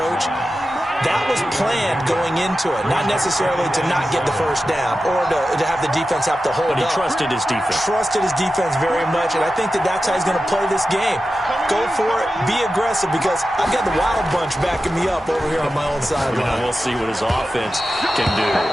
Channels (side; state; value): both; normal; correlation 0.92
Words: That was planned going into it, not necessarily to not get the first down or to have the defense have to hold up. But he trusted his defense. Trusted his defense very much, and I think that's how he's going to play this game. Go for it, be aggressive, because I've got the Wild Bunch backing me up over here on my own sideline. We'll see what his offense can do.